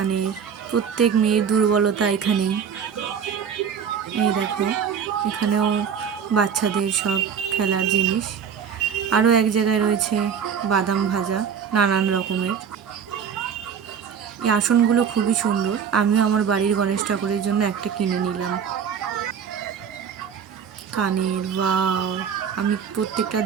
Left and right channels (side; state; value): left; quieter; 7.3 dB